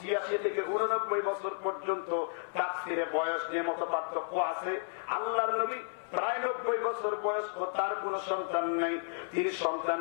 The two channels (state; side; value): silent; right; 56 dB below the other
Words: থেকে ৮৯ বছর পর্যন্ত তাফসীরে বয়স নিয়ে মত পার্থক্য আছে। আল্লাহর নবী প্রায় ৯০ বছর বয়স্ক, তার কোন সন্তান নাই। তিনি সন্তান